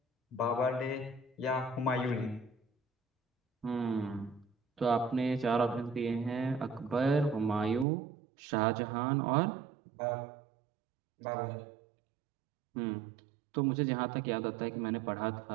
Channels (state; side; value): drops out; left; at 7.9 s